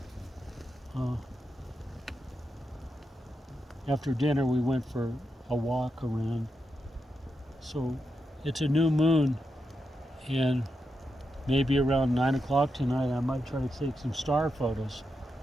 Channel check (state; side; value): normal; both; correlation 0.86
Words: after dinner we went for a walk around. So it's a new moon, and maybe around 9 o'clock tonight I might try to take some star photos.